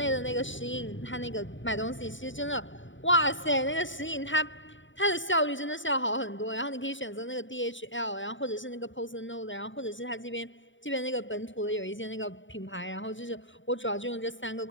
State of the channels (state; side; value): late; right; 0.55 ms